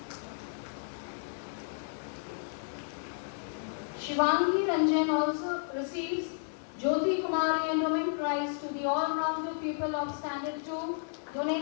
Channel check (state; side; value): silent; right; digital silence